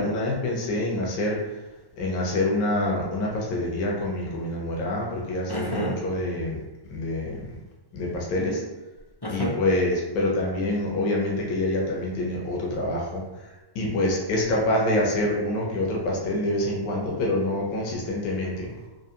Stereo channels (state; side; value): late; right; 1.1 ms